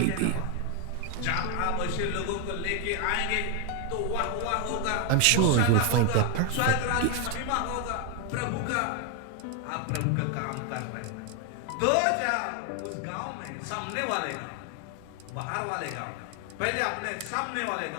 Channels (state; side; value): different; both; correlation 0.01